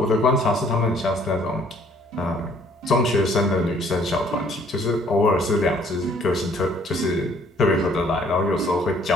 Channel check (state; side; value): normal; both; correlation 0.60